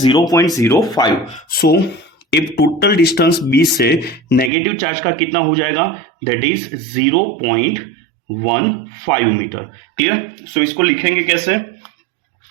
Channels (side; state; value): left; drops out; at 4.5 s